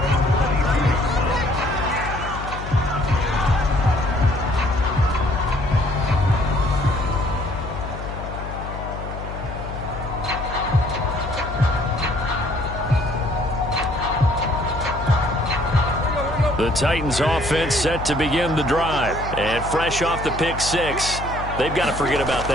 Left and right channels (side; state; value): left; noise; hum, 8 dB below the sound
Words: The Titans offense set to begin the drive. And fresh off the pick six, they've got to forget about